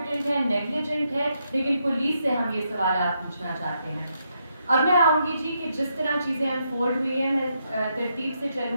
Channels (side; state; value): both; inverted; correlation -0.79